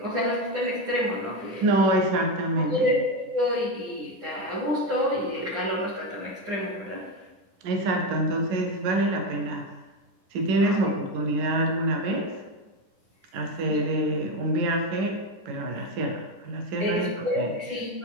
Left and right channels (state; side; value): late; left; 10 ms